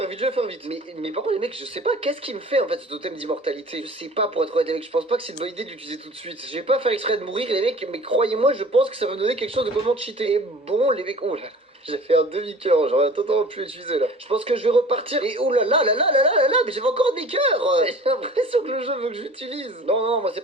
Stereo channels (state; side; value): normal; both; correlation 0.43